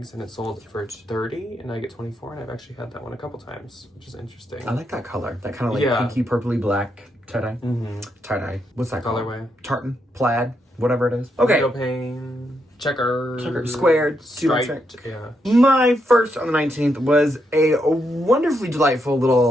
and it sold for $30, and I get $24. And I've actually had that one a couple times, which is interesting. I like that color. That kind of like pinky, purpley, black tie-dye. Tie-dye. What's that called? Colorway. Tartan, plaid, whatever it is. Okay. Window pane, checker, squared, striped. Yeah. My first on the 19th was a wonderfully delightful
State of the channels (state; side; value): normal; both; correlation 0.80